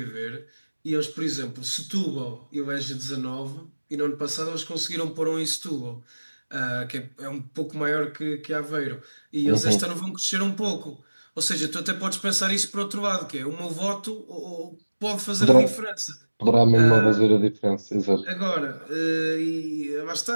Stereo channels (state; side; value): inverted; both; correlation -1.00